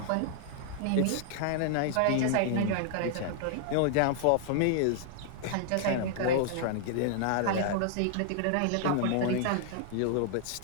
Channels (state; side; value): different; both; correlation -0.01